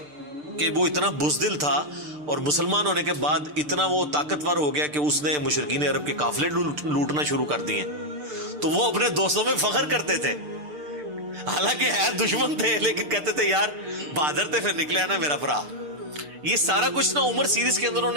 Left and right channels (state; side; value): late; left; 6.7 ms